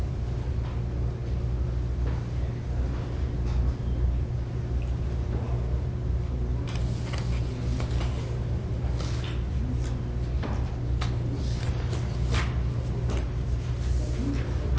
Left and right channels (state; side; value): identical; both; correlation 1.00